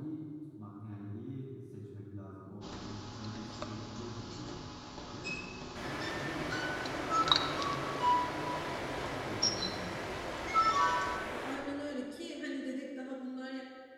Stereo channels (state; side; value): identical; both; correlation 1.00